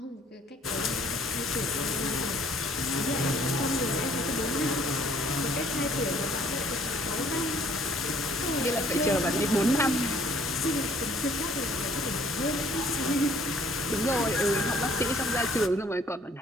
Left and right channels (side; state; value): both; normal; correlation 0.59